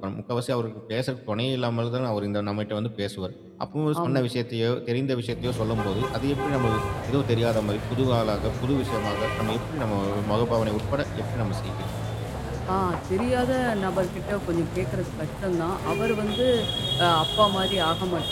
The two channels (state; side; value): identical; both; correlation 1.00